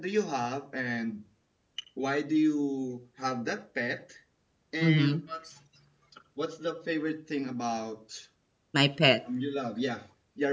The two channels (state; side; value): identical; both; correlation 1.00